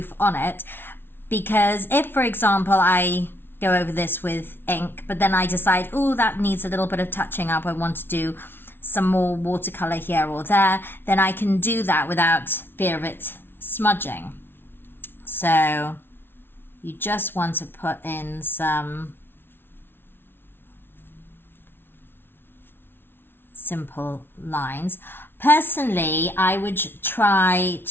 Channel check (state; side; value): late; right; 0.11 ms